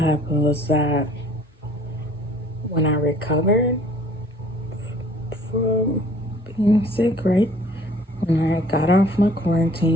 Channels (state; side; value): normal; both; correlation 0.55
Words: when I recovered from being sick, right? When I got off my